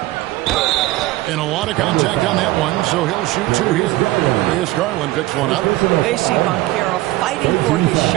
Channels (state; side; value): quieter; left; 17.8 dB